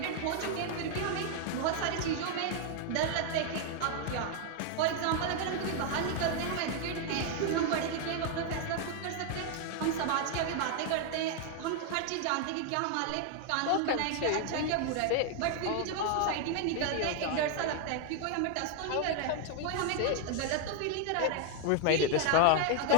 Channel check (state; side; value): different; both; correlation 0.00